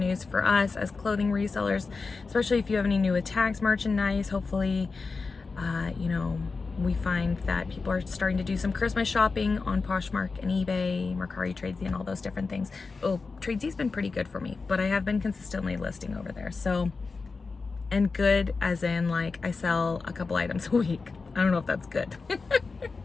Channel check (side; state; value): right; quieter; 4.3 dB